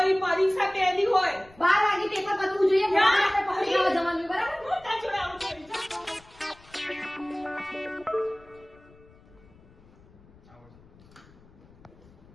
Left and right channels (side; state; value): left; noise; rumble, 26 dB below the sound